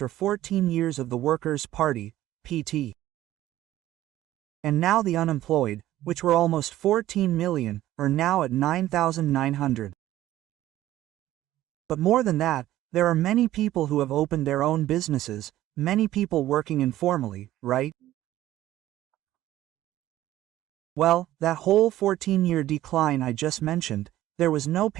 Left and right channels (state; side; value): quieter; left; 14.3 dB